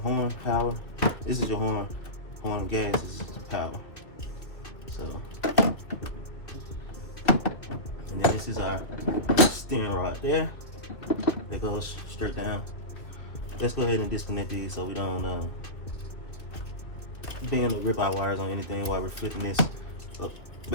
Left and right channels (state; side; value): late; right; 2.3 ms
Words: horn power. This is your horn. Horn gas is power. So, and then this is our steering rod there. That goes straight down. Let's go ahead and disconnect these so we don't bend or rip our wires on anything while we're flipping this up,